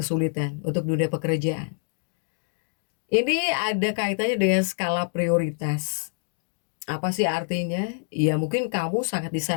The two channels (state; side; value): silent; right; digital silence